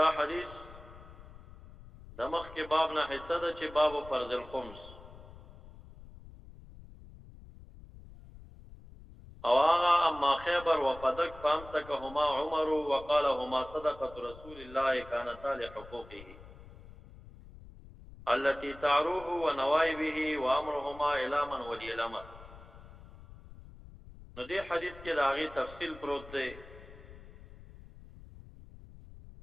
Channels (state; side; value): noise; left; rumble, 18 dB below the sound